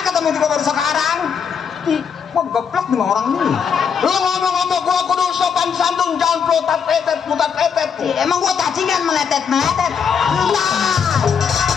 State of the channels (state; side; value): quieter; right; 6.8 dB